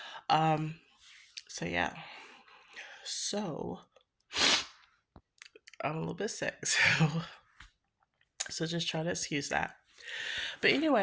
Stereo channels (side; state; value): both; identical; correlation 1.00